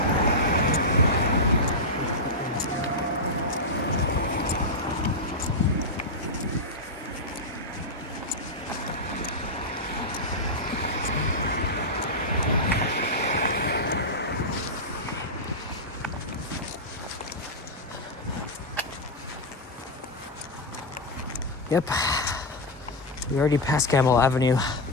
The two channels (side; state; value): both; normal; correlation -0.04